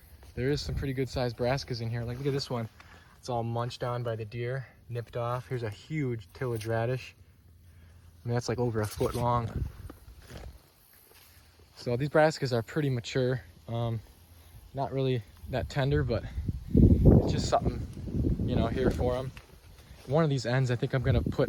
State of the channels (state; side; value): identical; both; correlation 1.00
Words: there is some pretty good sized brassicas in here. Like, look at this one. It's all munched on by the deer, nipped off. Here's a huge tillage radish. I mean, that's like over a foot long. So these brassicas are pretty mature. Not really that tender, but it's just something, you know, here for them. One of these ends, I think I'm gonna put